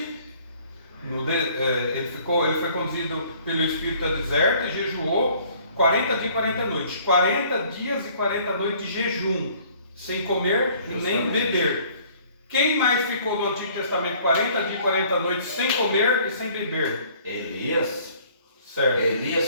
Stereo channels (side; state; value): both; inverted; correlation -0.57